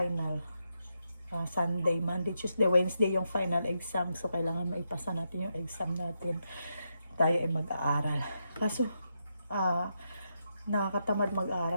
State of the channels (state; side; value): inverted; both; correlation -0.83